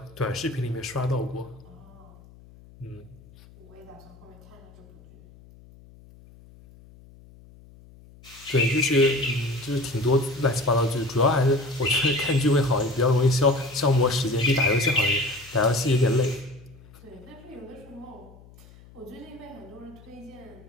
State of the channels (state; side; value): noise; left; hum, 23 dB below the sound